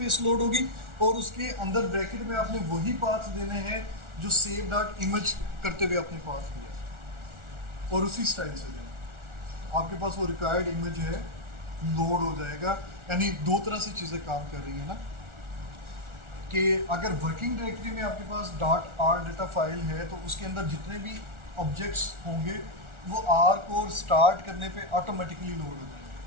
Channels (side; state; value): left; late; 1.4 ms